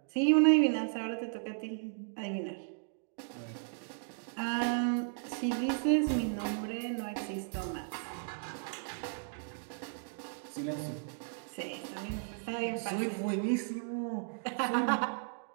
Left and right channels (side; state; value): left; silent; digital silence